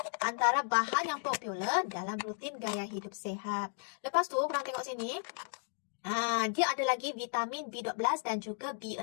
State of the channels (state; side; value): silent; right; digital silence